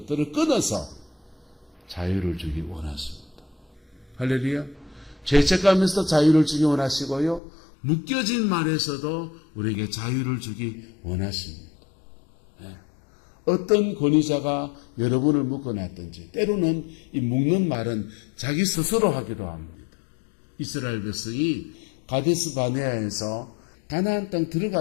끊어서 자유를 주기 원하십니다. 할렐루야. 죄책감에서 자유를 주기 원하시고요. 묶여진 말에서도 우리에게 자유를 주기 원하십니다. 네. 어떤 권위자가 여러분을 묶어놨든지 때로는 이 묶는 말은 자기 스스로 하기도 합니다. 이스라엘 백성이 가데스 바네아에서 가나안 땅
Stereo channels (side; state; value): right; drops out; at 7.4 s